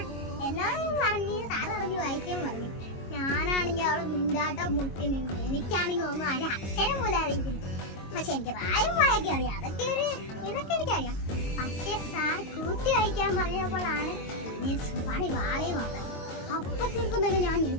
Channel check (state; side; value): late; right; 22 ms